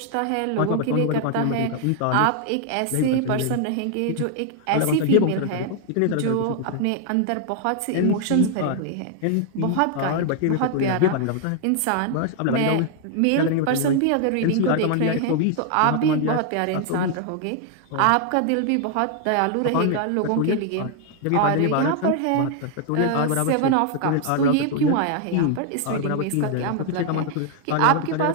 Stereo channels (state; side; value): different; both; correlation 0.00